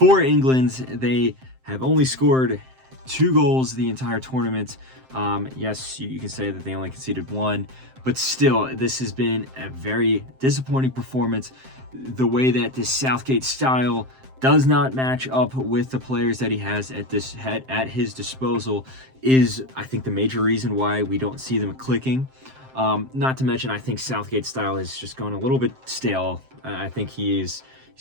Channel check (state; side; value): late; left; 7.7 ms